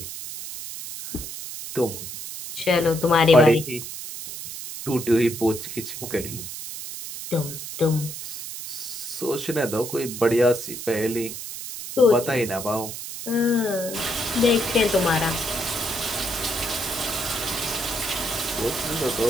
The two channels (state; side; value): noise; right; hiss, 9 dB below the sound